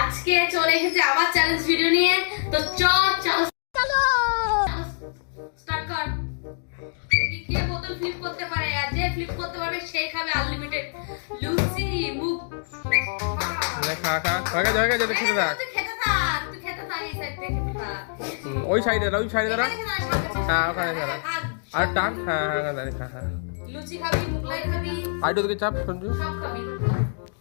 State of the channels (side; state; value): right; silent; digital silence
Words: চলে এসেছে আবার চ্যালেঞ্জ ভিডিও নিয়ে। তো চলো স্টার্ট কর। কে বোতল ফ্লিপ করতে পারে, আর যে ফ্লিপ করতে পারবে সেই খাবে আনলিমিটেড লুচি মুখ। খা খা হয়ে গেছে যদি খেতে থাক। তুই খেতে থাক এই সাইড থেকে খা। ওই সাইডে দাঁড়া হ্যাঁ ওখানে দাঁড়া আর টান হ্যাঁ হ্যাঁ দাঁড়িয়ে খা হ্যাঁ লুচি খাবি, মুগলাই খাবি, আইডো দিকে চাপ সঞ্জু সব খাবি।